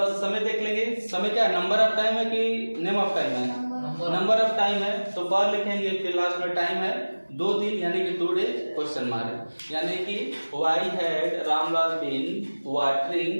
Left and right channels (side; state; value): both; inverted; correlation -1.00